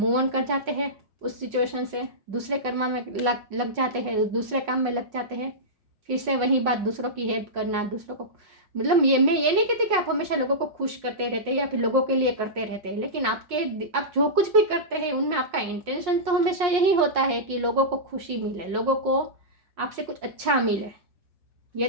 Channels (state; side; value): late; left; 5.6 ms